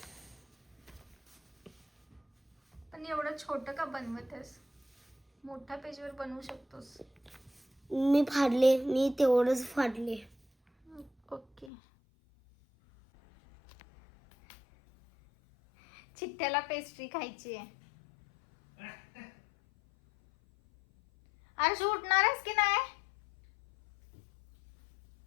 पण एवढं छोटं का बनवत आहेस? मोठ्या पेजवर बनवू शकतोस. मी तेवढंच फाडले. ओके. चिट्ट्याला पेस्ट्री खायची आहे. आरशू उठणार आहेस की नाही?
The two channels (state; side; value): drops out; right; at 11.7 s